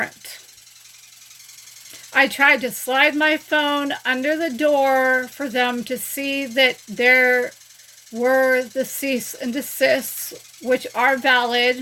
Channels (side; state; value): both; identical; correlation 1.00